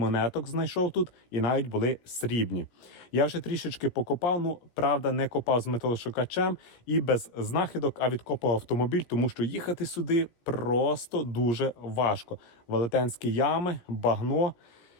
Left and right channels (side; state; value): right; late; 17 ms